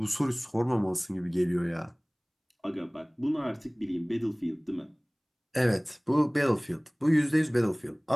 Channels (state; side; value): identical; both; correlation 1.00